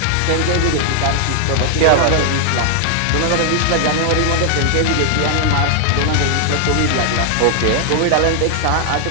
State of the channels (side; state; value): both; different; correlation 0.00